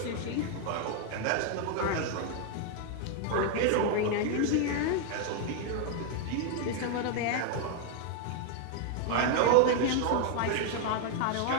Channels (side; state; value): both; different; correlation 0.00